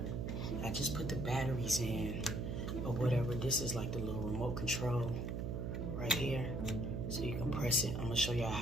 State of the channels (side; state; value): right; noise; hum, 2 dB below the sound